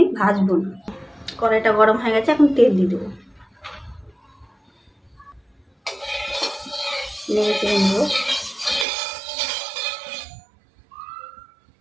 ভাজবো না। কড়াইটা গরম হয়ে গেছে, এখন তেল দিয়ে দেবো। নেড়ে চেড়ে নেবো।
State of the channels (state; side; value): drops out; left; at 8.8 s